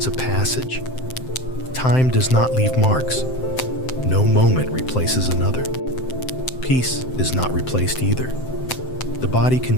of passage. Time does not leave marks. No moment replaces another. Peace is not replaced either. The body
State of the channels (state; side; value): late; right; 7.7 ms